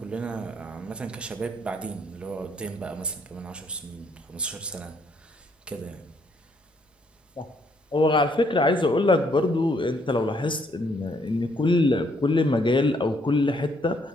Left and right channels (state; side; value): normal; both; correlation 0.69